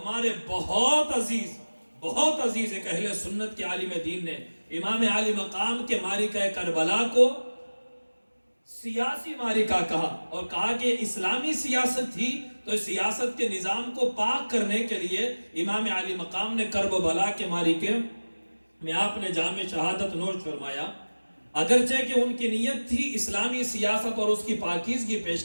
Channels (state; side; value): inverted; both; correlation -1.00